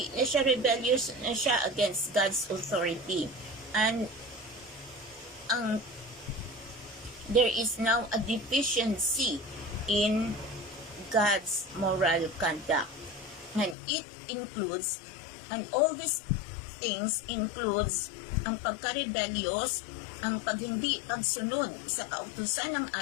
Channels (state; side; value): drops out; right; at 13.8 s